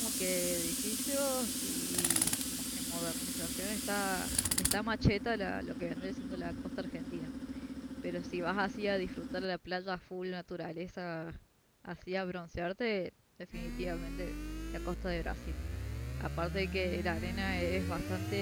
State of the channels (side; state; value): both; identical; correlation 1.00